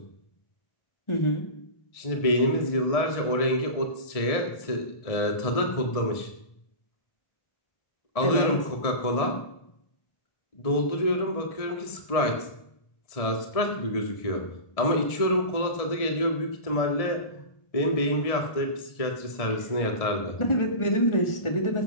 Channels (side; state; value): right; late; 1.6 ms